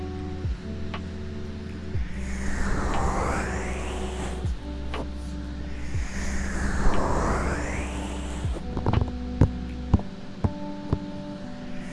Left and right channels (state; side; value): identical; both; correlation 1.00